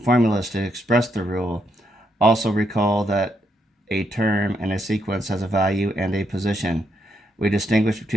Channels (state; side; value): normal; both; correlation 0.78